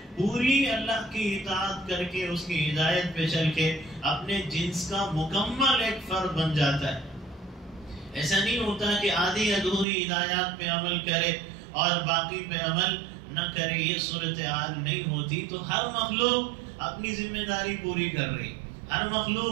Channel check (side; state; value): left; drops out; at 9.9 s